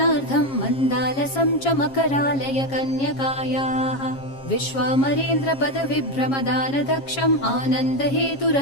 मन्दालसं च मकरालय कन्यकायाः विश्वामरेन्द्रपदविभ्रमदानदक्षम्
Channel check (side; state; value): right; late; 7.4 ms